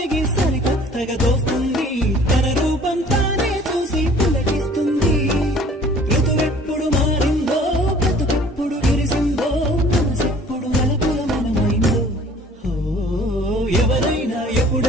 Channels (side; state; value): both; normal; correlation 0.51